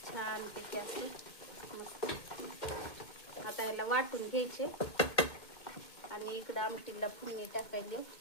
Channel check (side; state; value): right; late; 2.2 ms